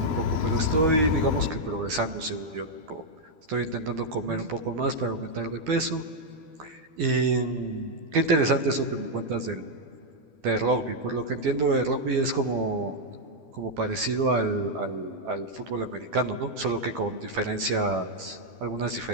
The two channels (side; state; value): left; late; 12 ms